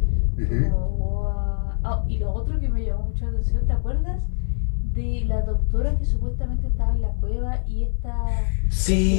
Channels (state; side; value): silent; right; 63 dB below the other